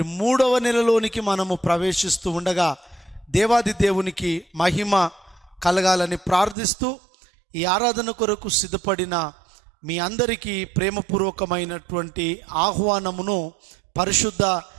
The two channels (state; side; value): drops out; left; at 6.6 s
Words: 3వ నెలలోనికి మనము ప్రవేశిస్తూ ఉండగా దేవాది దేవునికి మహిమ కలగాలని ప్రార్థిస్తూ ఈ ఆరాధన కొరకు సిద్ధపడిన మీ అందరికీ ప్రేమపూర్వకమైనటువంటి ఆహ్వానమును పరిశుద్ధ